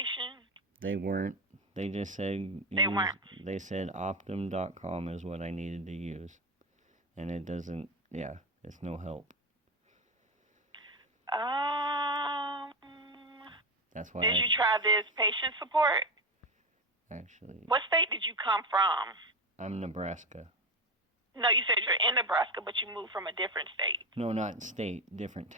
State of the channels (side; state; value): both; normal; correlation 0.17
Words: They weren't. They just said... They said Optum.com is what I needed to use. And it doesn't... Yeah, it's no help. That's why Did you try this patient support? Actually... What state did you come from? I'm Nebraska. No, you said you're in Nebraska, but you moved from a different state. No, not state, different